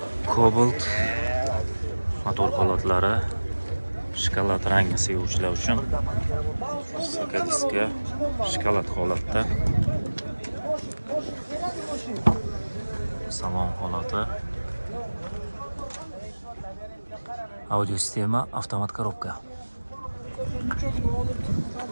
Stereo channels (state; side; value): inverted; both; correlation -1.00